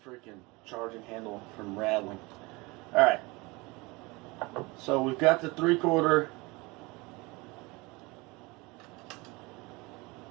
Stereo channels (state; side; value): quieter; left; 24.6 dB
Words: freaking charging handle from rattling. Alright. So we've got the 3/4.